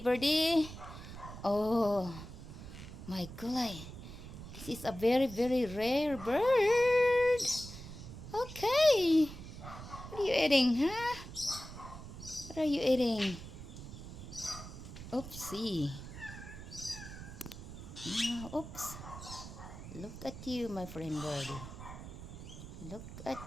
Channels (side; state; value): right; noise; rumble, 12 dB below the sound